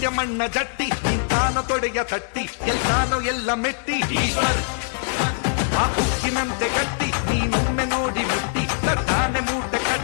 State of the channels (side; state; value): right; silent; digital silence